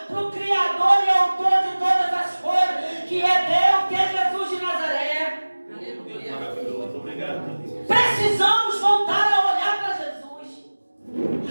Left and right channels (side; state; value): both; inverted; correlation -1.00